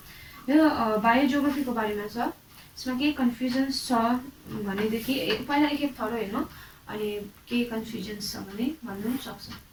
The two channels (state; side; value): identical; both; correlation 1.00